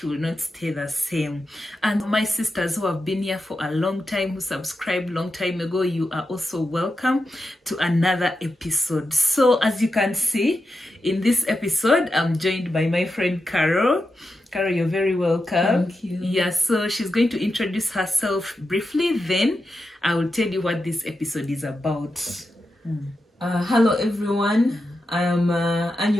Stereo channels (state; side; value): normal; both; correlation 0.89